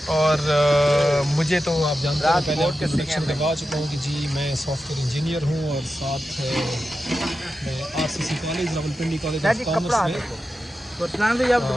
और मुझे तो आप जानते हैं, पहले आपके इंट्रोडक्शन करवा चुका हूँ कि जी मैं सॉफ्टवेयर इंजीनियर हूँ, और साथ मैं RCC college Rawalpindi college of commerce में। तो अरसलान भाई आप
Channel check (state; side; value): normal; both; correlation 0.91